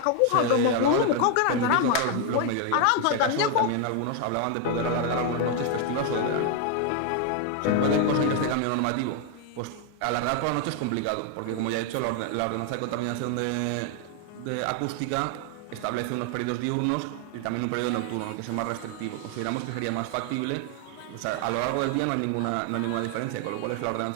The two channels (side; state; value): both; different; correlation 0.01